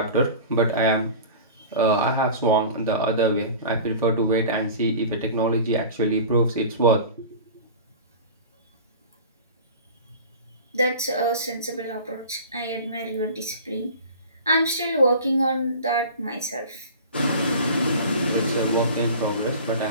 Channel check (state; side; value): inverted; both; correlation -0.37